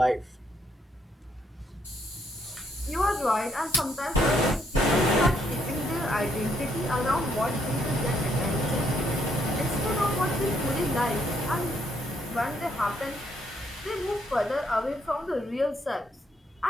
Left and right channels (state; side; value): normal; both; correlation 0.72